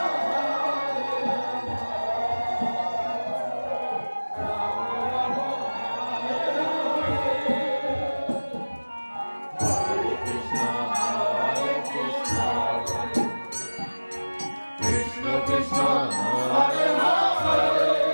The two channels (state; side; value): inverted; both; correlation -1.00